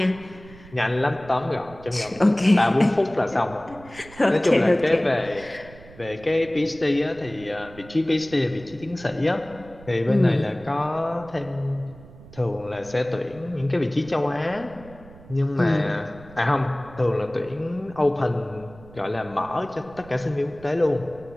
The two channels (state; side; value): noise; right; rumble, 20 dB below the sound